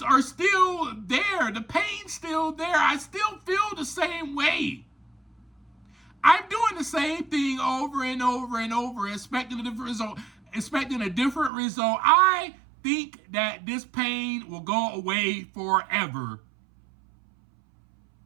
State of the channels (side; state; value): left; drops out; at 11.5 s